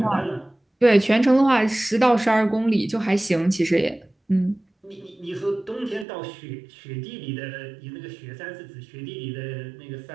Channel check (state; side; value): drops out; left; at 6.1 s